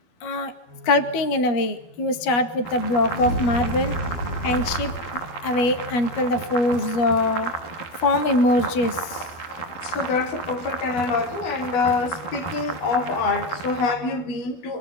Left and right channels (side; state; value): right; late; 12 ms